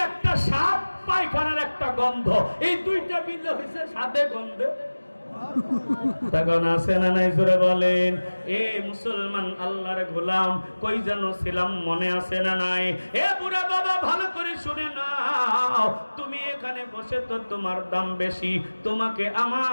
একটা স্বাদ, পায়খানার একটা গন্ধ, এই দুইটা মিলে হয়েছে স্বাদে গন্ধে। তখন আছে না নাই জোরে বলেন? এ মুসলমান আল্লাহর গোলাম কই যেন ছিলাম, মনে আছে না নাই? এ বুড়া বাবা ভালো করে শুনে নাও, তুমি এখানে বসে তো তোমার দাম বেশি, তোমাকে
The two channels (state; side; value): inverted; both; correlation -1.00